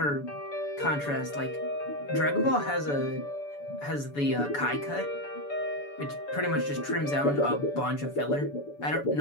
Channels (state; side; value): late; right; 7.0 ms